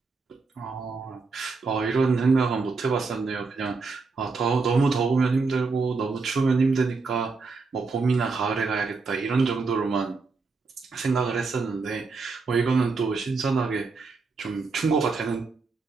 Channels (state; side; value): quieter; left; 4.3 dB